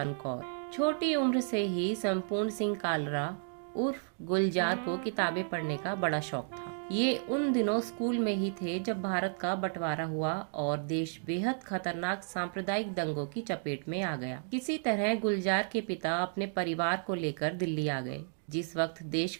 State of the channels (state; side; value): silent; left; 56 dB below the other